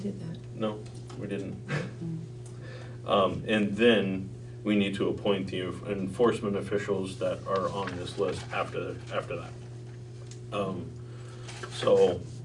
that. No, we didn't. And then we need to appoint the enforcement officials that are on this list after that. So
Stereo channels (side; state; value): both; identical; correlation 1.00